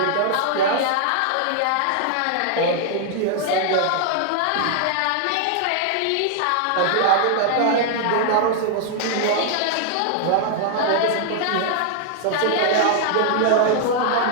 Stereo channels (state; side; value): different; both; correlation -0.01